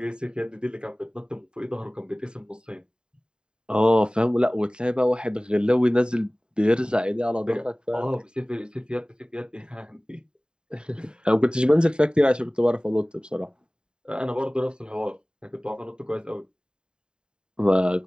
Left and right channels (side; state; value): left; late; 0.048 ms